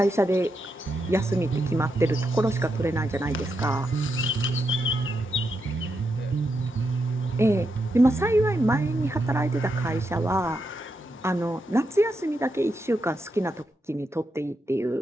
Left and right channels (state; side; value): normal; both; correlation 0.84